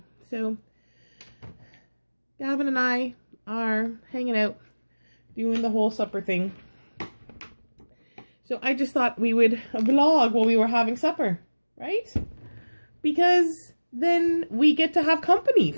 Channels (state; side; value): inverted; both; correlation -1.00